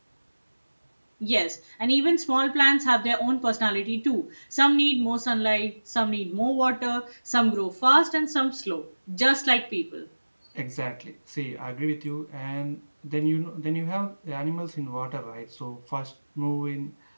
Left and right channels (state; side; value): inverted; both; correlation -1.00